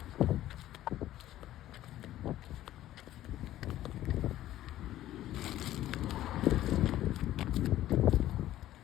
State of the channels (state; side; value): quieter; right; 13.7 dB